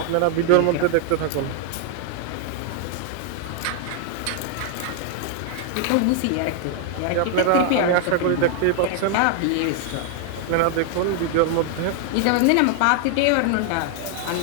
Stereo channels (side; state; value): both; different; correlation 0.00